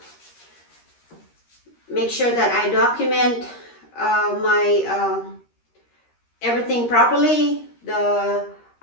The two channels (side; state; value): right; late; 13 ms